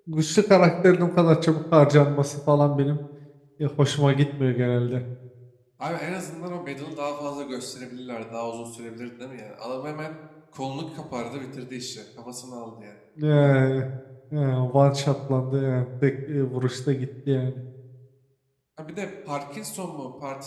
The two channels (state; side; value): identical; both; correlation 1.00